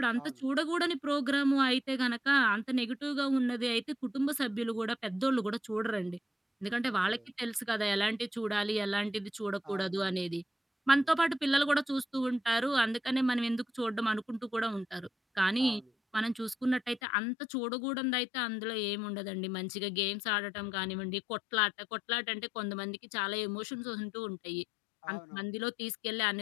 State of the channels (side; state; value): right; drops out; at 17.0 s